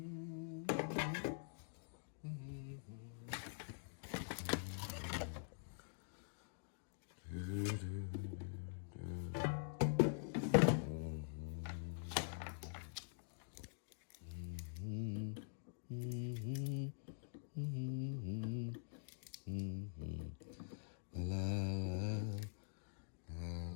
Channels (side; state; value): right; silent; digital silence